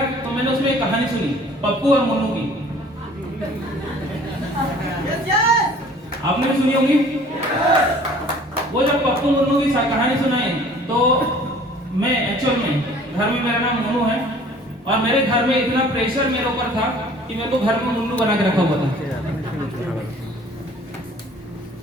तो मैंने उसमें एक कहानी सुनी, पप्पू और मुन्नू की। आपने भी सुनी होगी। वो जब पप्पू मुन्नू की कहानी सुनाई तो मैं एक्चुअल में घर में, मेरा नाम मुन्नू है और मेरे घर में इतना प्रेशर मेरे ऊपर था कि मेरे को घर में मुन्नू बना के रखा हुआ था।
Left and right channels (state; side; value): normal; both; correlation 0.51